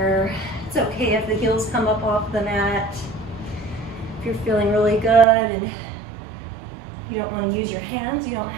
It's okay if the heels come up off the mat. If you're feeling really good and you don't want to use your hands, you don't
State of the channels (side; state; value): left; drops out; at 5.2 s